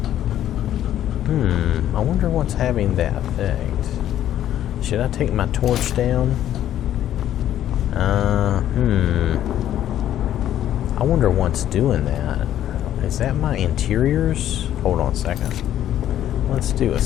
I wonder what's having that effect. Should I take my torch down? I wonder what's doing that. Is that my interiors? Hold on a second. Let's do a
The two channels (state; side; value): quieter; right; 11.6 dB